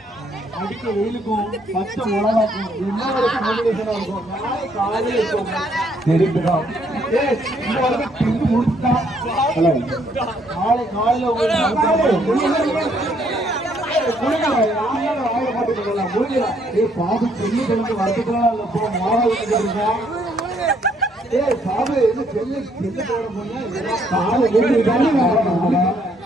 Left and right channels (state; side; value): normal; both; correlation 0.68